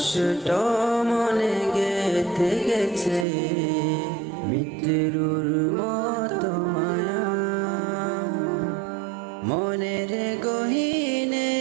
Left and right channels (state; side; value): drops out; left; at 3.2 s